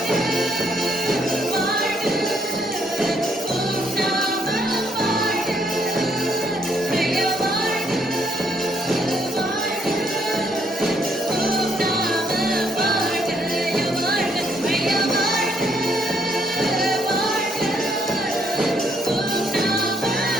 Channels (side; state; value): both; normal; correlation 0.71